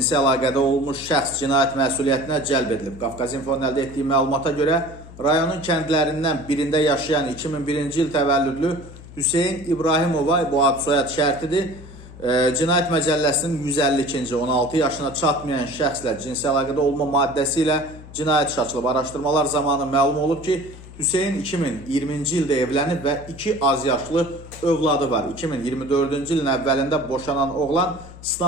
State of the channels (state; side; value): noise; left; hum, 17 dB below the sound